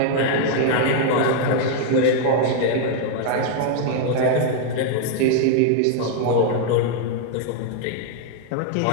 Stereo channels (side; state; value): both; different; correlation -0.01